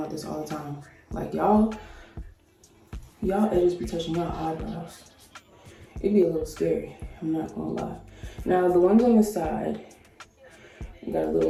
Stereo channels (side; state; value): both; identical; correlation 1.00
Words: this all the time. Like, y'all edges be touching y'all eyebrows. It'd be a little scary, I'm not gonna lie. Now, the ones on the side, you got a